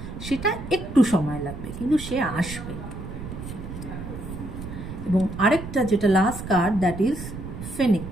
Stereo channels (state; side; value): noise; right; rumble, 9 dB below the sound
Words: সেটা একটু সময় লাগবে, কিন্তু সে আসবে। এবং আরেকটা যেটা last card, that is